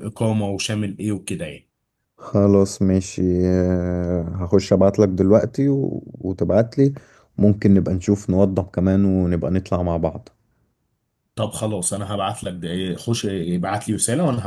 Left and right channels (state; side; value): identical; both; correlation 1.00